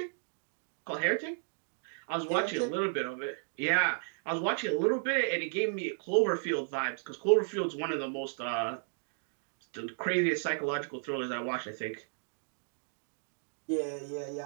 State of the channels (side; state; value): left; silent; digital silence